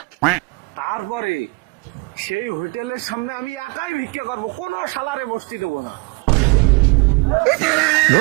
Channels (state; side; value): quieter; left; 27.7 dB